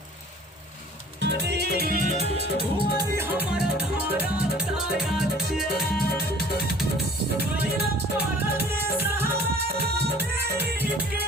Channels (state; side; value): normal; both; correlation 0.50